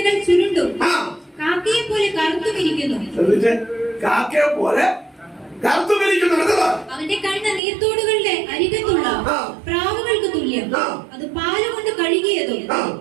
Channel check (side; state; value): left; drops out; at 7.6 s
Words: ചുരുണ്ടും കാക്കയെ പോലെ കറുത്തുമിരിക്കുന്നു. അവന്റെ കണ്ണ് നീർത്തോടുകളുടെ അരികത്തുള്ള പ്രാവുകൾക്ക് തുല്യം. അത് പാലുകൊണ്ട് കഴുകിയതും